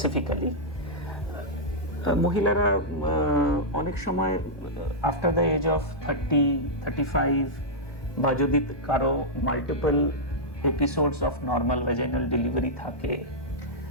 মহিলারা অনেক সময় আফটার দ্য এজ অফ 30-35 বা যদি কারো multiple episodes of normal vaginal delivery থাকে,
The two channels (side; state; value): right; late; 1.2 ms